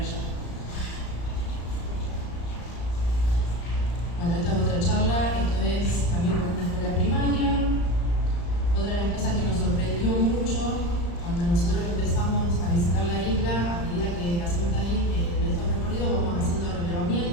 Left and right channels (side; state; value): right; late; 35 ms